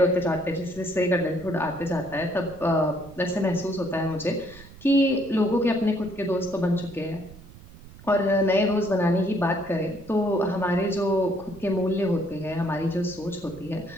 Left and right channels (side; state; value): right; noise; rumble, 19 dB below the sound